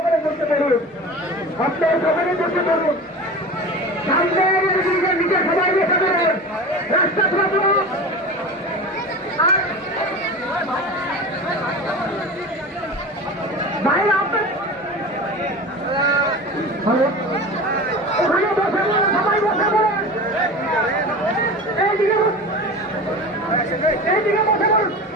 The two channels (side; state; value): both; normal; correlation 0.32